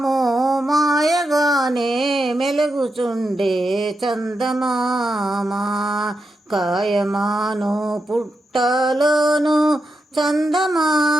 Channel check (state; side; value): normal; both; correlation 0.86